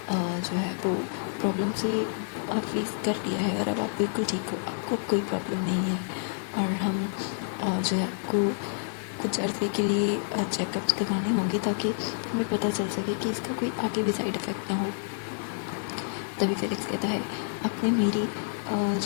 जो है वो प्रॉब्लम से फेस कर लिया है और अब आप बिल्कुल ठीक हो, आपको अब कोई प्रॉब्लम नहीं है। और हम जो है आपको कुछ अर्से के लिए चेकअप्स करवाने होंगे ताकि हमें पता चल सके कि इसका कोई आगे भी साइड इफ़ेक्ट ना हो। तभी फेलिक्स कहता है आपने मेरी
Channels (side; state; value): right; silent; 59 dB below the other